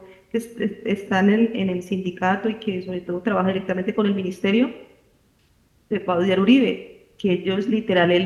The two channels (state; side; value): identical; both; correlation 1.00